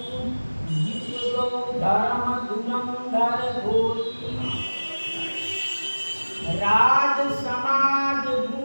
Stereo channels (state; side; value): inverted; both; correlation -1.00